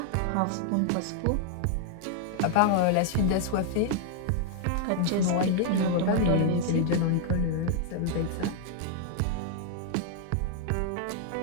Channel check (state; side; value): different; both; correlation 0.00